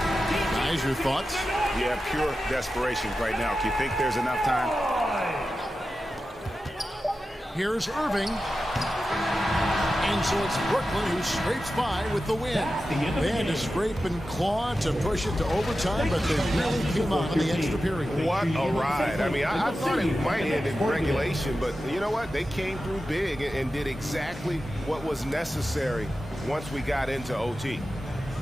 your thoughts? Yeah, pure desperation right now. Do you think there's enough time? Here's Irving. And so it's Brooklyn who scrapes by with the win. They had to scrape and claw to push it to overtime, but they really came out in the extra period. What a ride. I mean, I thought it might end in regulation, but you know what? They came through big and did exactly what was necessary once we got into OT.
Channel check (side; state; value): both; normal; correlation 0.92